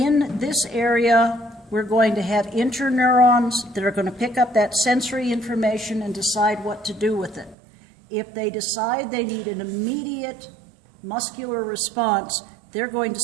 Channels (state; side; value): drops out; left; at 7.6 s